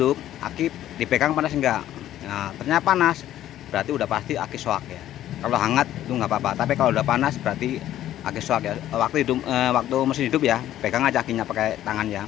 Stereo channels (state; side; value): quieter; right; 12.6 dB